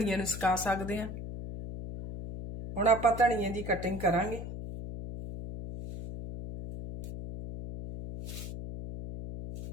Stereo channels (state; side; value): noise; left; hum, 8 dB below the sound